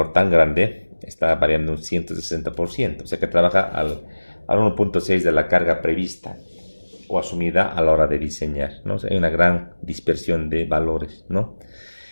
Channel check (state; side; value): inverted; both; correlation -1.00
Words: tan grande está variando un 160%. O sea que trabaja al 1.6 de la carga prevista o asumida a la hora de diseñar, ¿no? O sea, hay una gran dispersión de valores, ¿no?